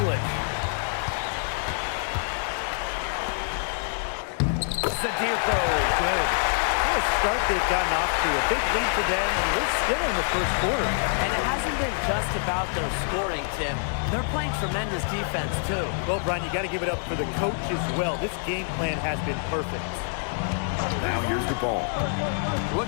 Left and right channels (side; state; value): right; silent; digital silence